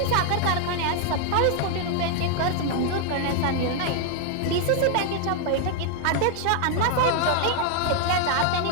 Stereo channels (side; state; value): both; different; correlation 0.00